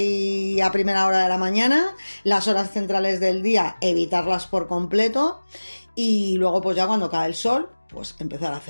a primera hora de la mañana, las horas centrales del día, evitarlas por completo, y luego pues ya cuando cae el sol, pues empezar a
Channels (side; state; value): both; inverted; correlation -1.00